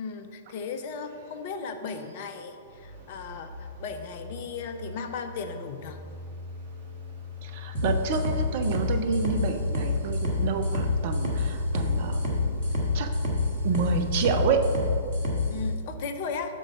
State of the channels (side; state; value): both; inverted; correlation -0.49